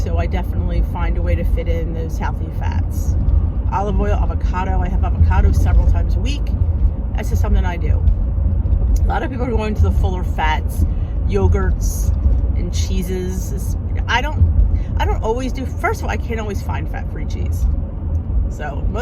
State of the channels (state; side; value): identical; both; correlation 1.00